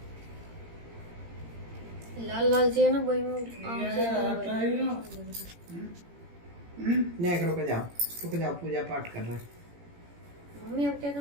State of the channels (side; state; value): left; late; 17 ms